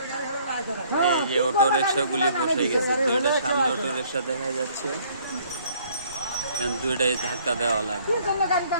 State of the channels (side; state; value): both; inverted; correlation -0.60